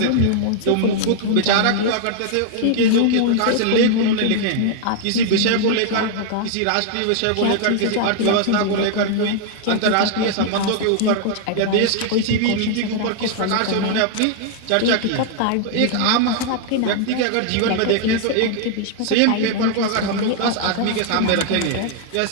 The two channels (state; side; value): different; both; correlation 0.00